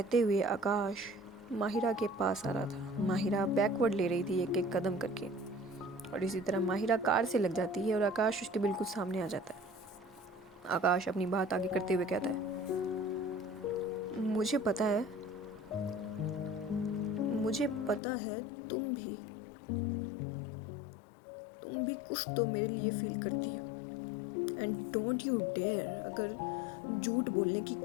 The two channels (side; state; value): right; drops out; at 18.0 s